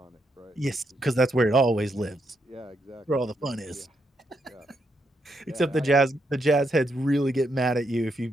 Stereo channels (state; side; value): normal; both; correlation 0.79